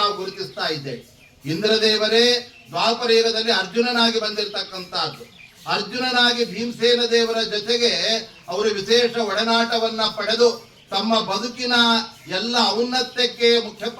ನಾವು ಗುರುತಿಸ್ತಾ ಇದ್ದೇವೆ. ಇಂದ್ರದೇವರೇ ದ್ವಾಪರ ಯುಗದಲ್ಲಿ ಅರ್ಜುನನಾಗಿ ಬಂದಿರತಕ್ಕಂತಹದ್ದು. ಅರ್ಜುನನಾಗಿ ಭೀಮಸೇನ ದೇವರ ಜೊತೆಗೆ ಅವರು ವಿಶೇಷ ಒಡನಾಟವನ್ನ ಪಡೆದು ತಮ್ಮ ಬದುಕಿನ ಎಲ್ಲ ಔನ್ನತ್ಯಕ್ಕೆ ಮುಖ್ಯ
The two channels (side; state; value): both; identical; correlation 1.00